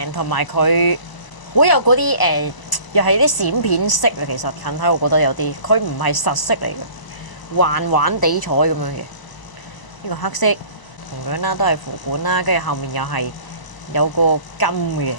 同埋佢好有嗰啲又係啲閃片色啊。其實近睇我覺得有啲，佢唔係實色嚟嘅。環環地彩咁樣嘅，呢個黑色同樣啦，都係符管啦，跟住後面又係有個金嘅，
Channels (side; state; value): right; late; 1.0 ms